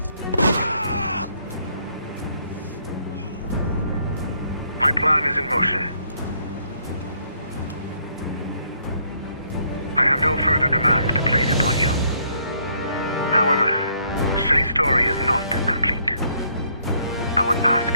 My plan is in motion. I have no further demands to place upon you. However, Shay's story is not complete. I would ask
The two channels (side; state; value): both; inverted; correlation -0.69